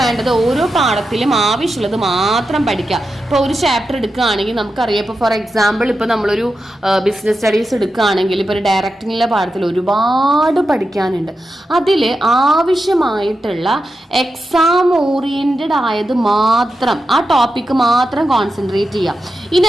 ഓരോ പാഠത്തിലും ആവശ്യമുള്ളത് മാത്രം പഠിക്കുക. ഇപ്പോൾ ഒരു ചാപ്റ്റർ എടുക്കുകയാണെങ്കിൽ നമുക്കറിയാം, ഇപ്പോൾ ഫോർ എക്സാമ്പിൾ ഇപ്പോൾ നമ്മളൊരു ബിസിനസ് സ്റ്റഡീസ് എടുക്കുകയാണെങ്കിൽ ഇപ്പോൾ ഒരു ഡയറക്റ്റിങ്ങിലെ പാഠത്തിൽ ഒരുപാട് പഠിക്കാനുണ്ട്. അതിൽ ആവശ്യമായിട്ടുള്ള എക്സാം ഓറിയൻറ്റഡ് ആയത് മാത്രം, ആ ടോപ്പിക്ക് മാത്രം കോൺസെൻട്രേറ്റ് ചെയ്യുക. ഇനി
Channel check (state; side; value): normal; both; correlation 0.89